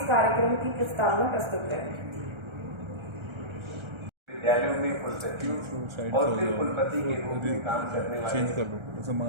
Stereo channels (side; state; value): left; late; 1.3 ms